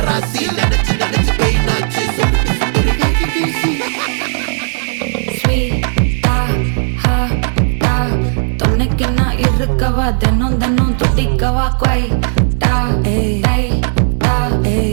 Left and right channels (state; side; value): silent; left; digital silence